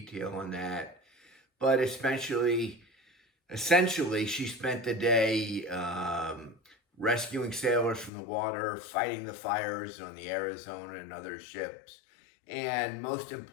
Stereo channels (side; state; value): right; drops out; at 8.1 s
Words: on that. But essentially, she spent the day rescuing sailors from the water, fighting the fires on the Arizona and other ships, and most